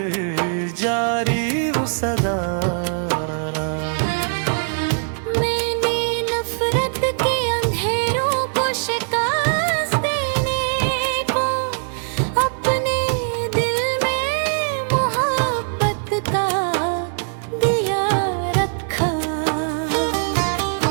जारी वो सदा। मैंने नफरत के अंधेरों को शिकस्त देने को अपने दिल में मोहब्बत का दिया रखा।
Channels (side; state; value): left; silent; 65 dB below the other